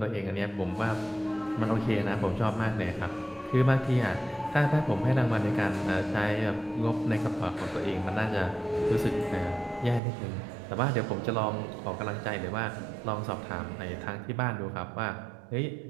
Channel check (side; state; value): left; drops out; at 10.0 s